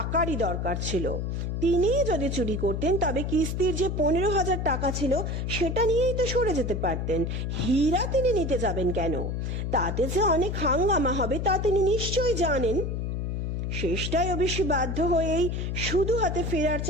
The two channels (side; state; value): left; noise; hum, 2 dB below the sound